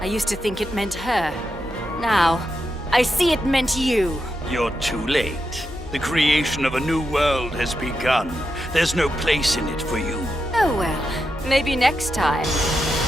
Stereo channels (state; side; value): normal; both; correlation 0.86